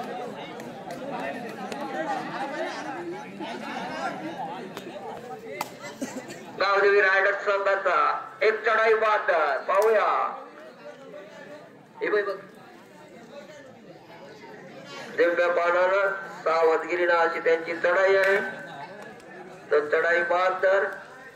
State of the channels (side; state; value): both; identical; correlation 1.00